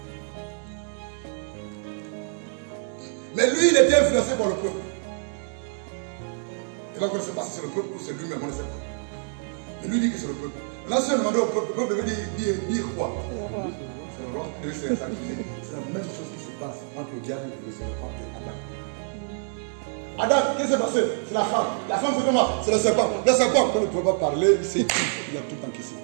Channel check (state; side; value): silent; left; digital silence